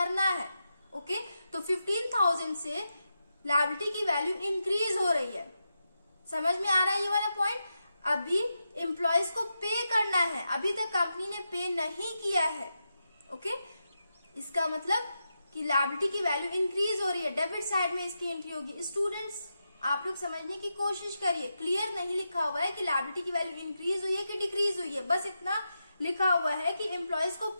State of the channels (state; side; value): inverted; both; correlation -0.88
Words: है। ओके, तो 15,000 से लायबिलिटी की वैल्यू इंक्रीज हो रही है। समझ में आ रहा है ये वाला पॉइंट? अभी एम्प्लॉयज को पे करना है, अभी तक कंपनी ने पे नहीं किया है। ओके, इसका मतलब कि लायबिलिटी की वैल्यू इंक्रीज हो रही है, डेबिट साइड में इसकी एंट्री होगी। स्टूडेंट्स आप लोग समझने की कोशिश करिए, क्लियर नहीं लिखा हुआ है कि लायबिलिटी की वैल्यू इंक्रीज हुई है कि डिक्रीज हुई है, बस इतना लिखा हुआ है कि एम्प्लॉयज को